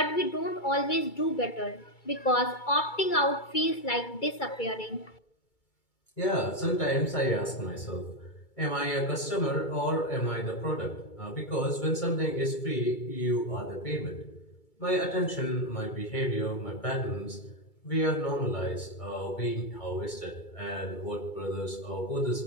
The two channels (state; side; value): late; right; 2.3 ms